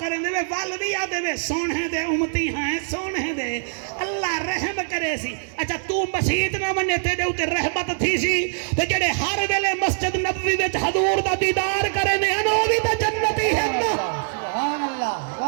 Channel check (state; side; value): silent; left; 63 dB below the other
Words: دے وے والوی آدے وے سونے دے امتی ہیں سونے دے اللہ رحم کرے سی اچھا تو مسیحت نہ منے تے دے اتے رحمت تھی سی تے جڑے ہر ویلے مسجد نبوی وچ حضور دا دیدار کریں دے انہوں بھی تا جنتی ہے سبحان اللہ